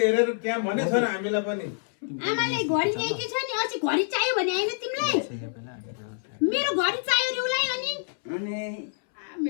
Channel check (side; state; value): right; silent; 60 dB below the other